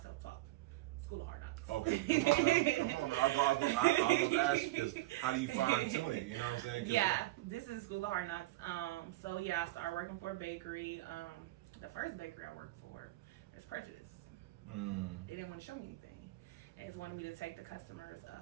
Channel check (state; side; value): quieter; left; 18.5 dB